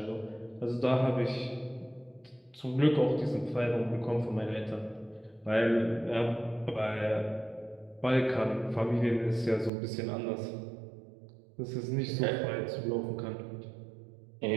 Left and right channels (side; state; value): left; drops out; at 9.7 s